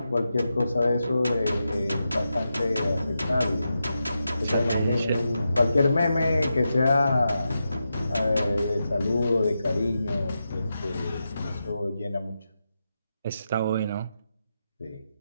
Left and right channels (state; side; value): inverted; both; correlation -0.88